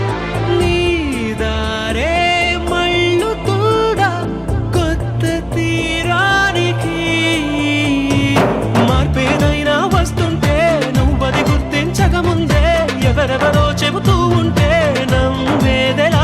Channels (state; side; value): identical; both; correlation 1.00